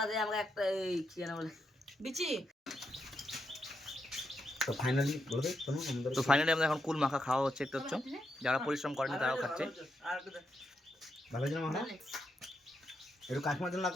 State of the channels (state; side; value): normal; both; correlation 0.82